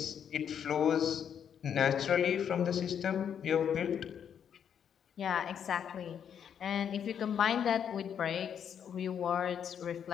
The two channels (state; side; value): quieter; right; 8.3 dB